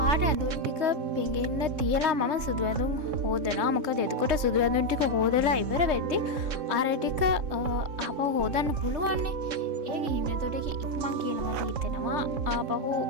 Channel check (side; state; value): left; late; 3.6 ms